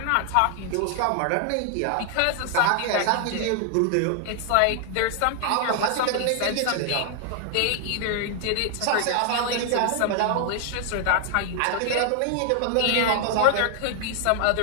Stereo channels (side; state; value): both; different; correlation 0.00